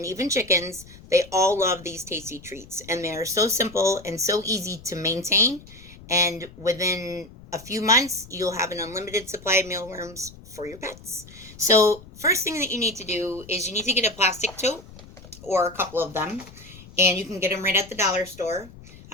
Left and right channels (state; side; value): noise; left; rumble, 19 dB below the sound